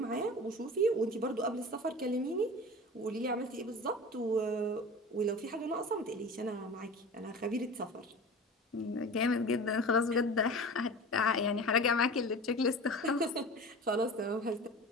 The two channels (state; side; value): normal; both; correlation 0.35